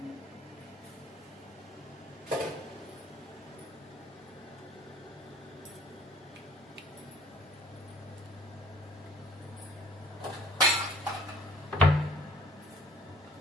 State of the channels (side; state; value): both; normal; correlation 0.54